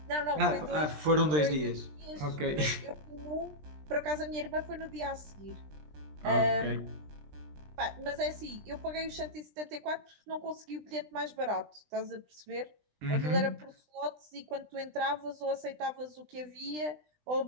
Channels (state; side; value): late; left; 20 ms